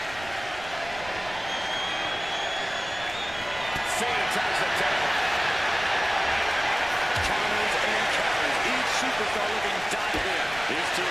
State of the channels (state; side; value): noise; right; rumble, 17 dB below the sound